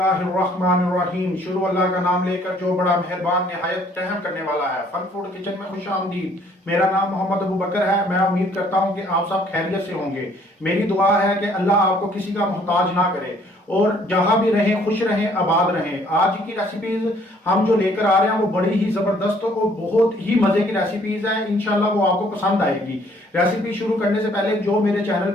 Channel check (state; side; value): normal; both; correlation 0.61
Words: शुरू अल्लाह का नाम लेकर जो बड़ा मेहरबान निहायत रहम करने वाला है। फन फूड किचन में खुश आमदीद। मेरा नाम मोहम्मद अबू बकर है। मैं उम्मीद करता हूँ कि आप सब खैरियत से होंगे। मेरी दुआ है कि अल्लाह आपको किसी का मोहताज ना करे और जहां भी रहें खुश रहें, आबाद रहें। आज की रेसिपीज हम जो लेकर आ रहे हैं वो बड़ी ही जबरदस्त और बहुत ही मजे की रेसिपीज है। इंशाल्लाह वो आपको पसंद आएगी। रेसिपी शुरू करने से पहले जो मेरे चैनल